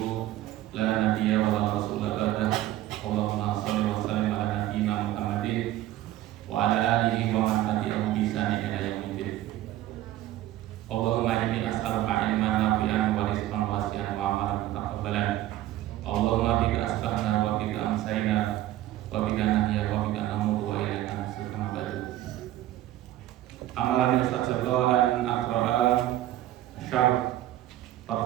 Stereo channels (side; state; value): left; quieter; 14.3 dB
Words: la nabiyya wa la rasula ba'dah. Allahumma shalli wa sallim ala nabiyyina Muhammadin wa ala alihi wa man tabi'ahum bi ihsan ila yaumil. Allahumma inni as'aluka ilman nafi'an wa rizqan wasi'an wa amalan mutaqabbalan. Allahumma bika asbahna wa bika amsayna wa bika nahya wa bika namutu wa ilaika nusyur kama ba'du. Amalan Ustaz Jabal an aqra'a syarh